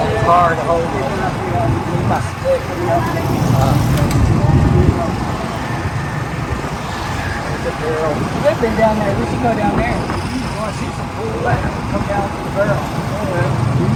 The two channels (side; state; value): both; identical; correlation 1.00